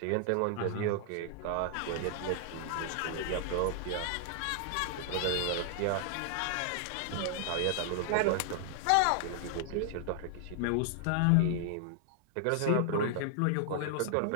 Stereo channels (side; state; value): both; different; correlation 0.00